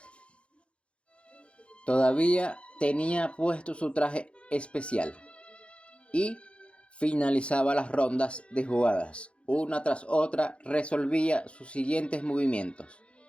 Todavía tenía puesto su traje especial y finalizaba las rondas de jugadas. Una tras otra resolvía sus siguientes movimientos.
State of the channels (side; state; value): right; late; 0.059 ms